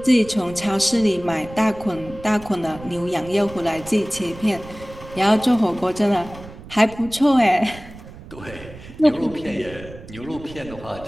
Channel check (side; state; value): right; noise; rumble, 16 dB below the sound